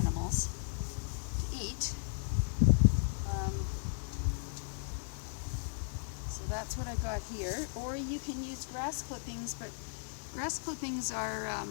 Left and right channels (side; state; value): right; silent; digital silence